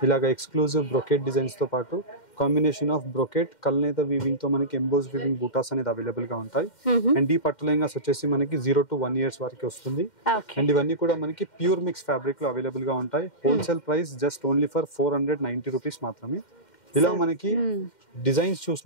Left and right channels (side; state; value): right; late; 2.1 ms